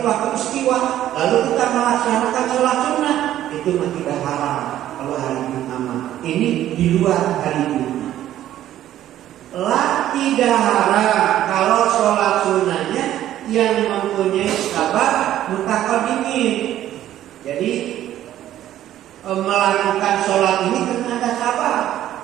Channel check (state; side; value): quieter; left; 12.5 dB